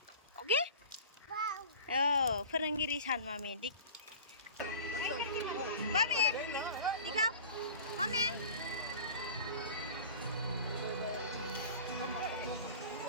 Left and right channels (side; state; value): both; inverted; correlation -0.40